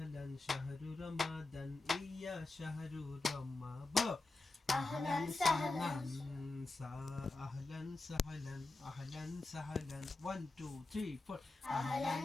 শাহরু রমাদান ইয়া শাহরু রমাদান أهلا سهلا أهلا سهلا أهلا سهلا 1 2 3 4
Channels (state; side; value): quieter; right; 3.2 dB